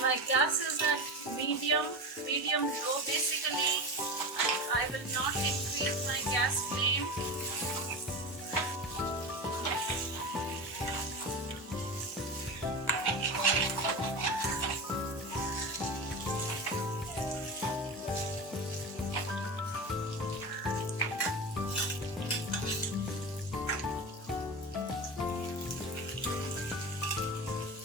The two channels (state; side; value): normal; both; correlation 0.25